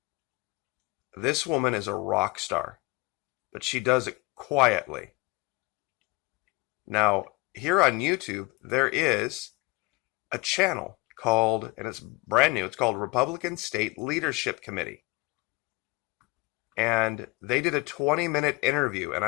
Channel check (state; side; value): quieter; right; 24.9 dB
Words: This woman is a rock star, but she does it quietly. Now, here on YouTube, there is a channel called, and it's brand new, it's called Republican State Leadership Committee. And they did a 20-minute interview, and